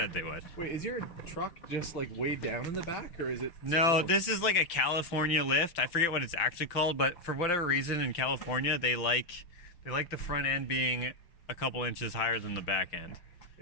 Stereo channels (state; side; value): late; right; 5.8 ms